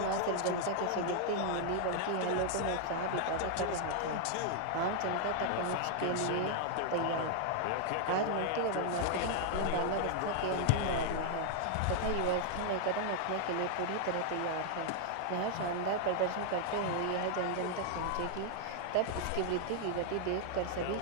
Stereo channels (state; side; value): different; both; correlation 0.00